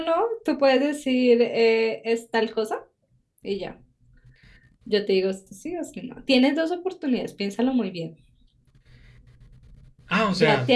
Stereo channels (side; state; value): both; identical; correlation 1.00